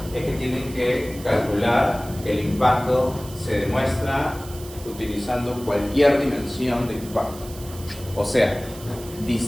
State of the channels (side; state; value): right; noise; hiss, 17 dB below the sound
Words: es que tienen que calcular que el impacto se demuestra utilizando cualquier dimensión de impacto. O sea,